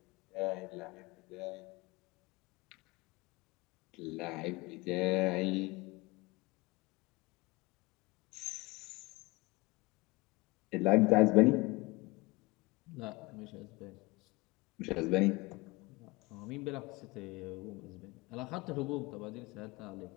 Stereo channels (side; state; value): right; quieter; 23.5 dB